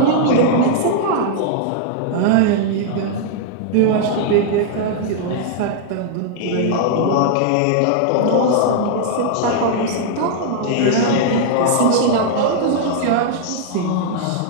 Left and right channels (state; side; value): different; both; correlation -0.01